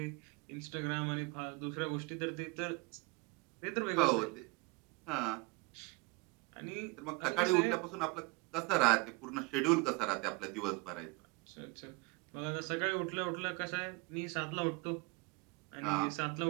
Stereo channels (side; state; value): left; quieter; 26.2 dB